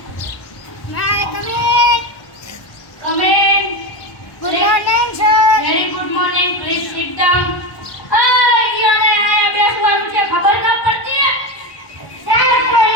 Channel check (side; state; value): right; late; 1.1 ms